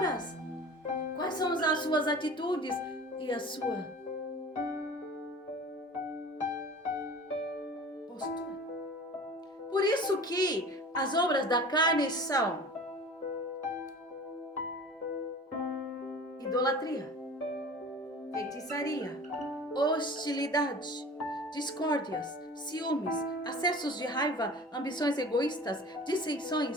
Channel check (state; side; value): normal; both; correlation 0.40